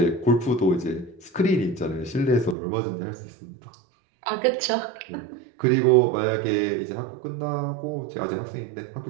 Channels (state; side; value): drops out; left; at 2.6 s